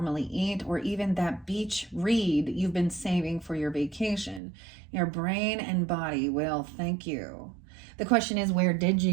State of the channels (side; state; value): left; drops out; at 4.4 s